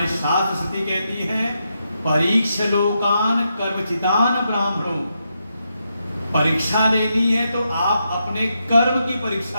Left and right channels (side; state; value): both; inverted; correlation -0.83